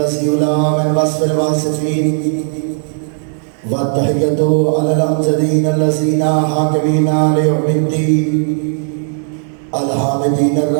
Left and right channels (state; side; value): silent; left; 64 dB below the other